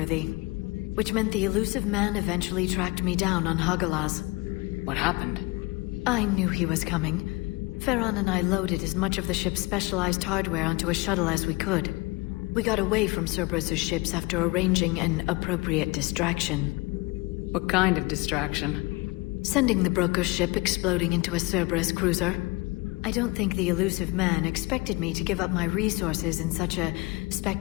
Which meant the elusive man eventually tracked me down on Hagalaz. What happened? I knew he was coming. Farron and I loaded as much of the ship's specialized hardware onto a shuttle as we could. We got away from Cerberus' ships after arranging an appropriate distraction. What kind of distraction? Sending the broker's ship exploding into a Cerberus cruiser. I don't think the elusive man expected me to give up my resources in such a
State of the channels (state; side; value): quieter; right; 24.3 dB